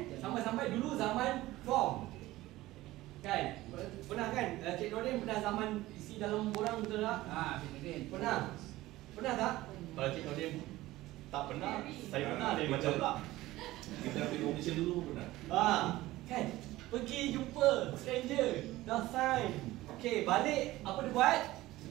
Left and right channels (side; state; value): left; quieter; 17.3 dB